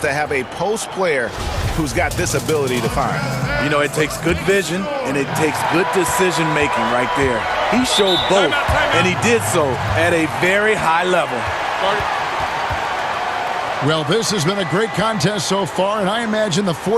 to have a post player who's got this ability to find. You know, it takes good vision and it takes good decision making right there. He showed both, and he did so at a very high level. Well, this has been a great contest so far, and I imagine the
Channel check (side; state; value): both; identical; correlation 1.00